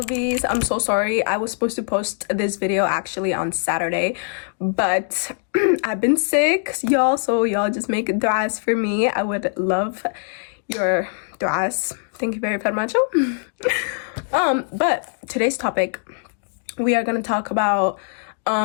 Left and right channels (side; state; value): right; silent; digital silence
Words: I'm so sorry. I was supposed to post this video actually on Saturday, but I've been sick, y'all, so y'all just make du'as for me. I would love your du'as. Thank you very much. But today's topic, we are going to talk about